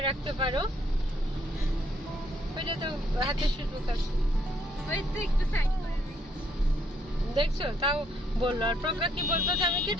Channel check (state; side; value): normal; both; correlation 0.70